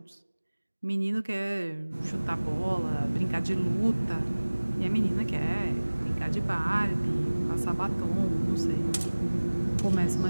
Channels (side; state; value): both; inverted; correlation -1.00